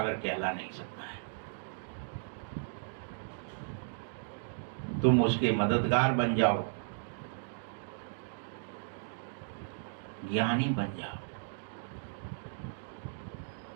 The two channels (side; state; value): left; silent; digital silence